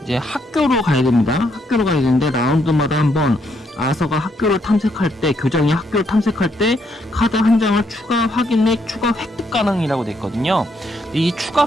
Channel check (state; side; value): normal; both; correlation 0.74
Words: 이제 학교로 가야 됩니다. 학교로 가야 되는데 라운드마다 한번 아서가 학교를 탐색할 때, 교장이 학교를 탐색할 때 카드 한 장을 추가 확인 및 추가 획득 가능이라고 돼 있거든요. 이 추가